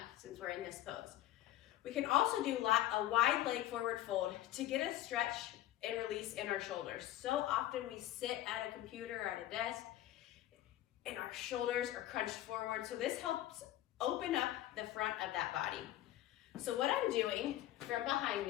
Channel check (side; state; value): right; quieter; 14.2 dB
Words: since we're in this pose. We can also do a wide leg forward fold to get a stretch and release in our shoulders. So often we sit at a computer or at a desk and our shoulders are crunched forward. So this helps open up the front of that body. So what I'm doing from behind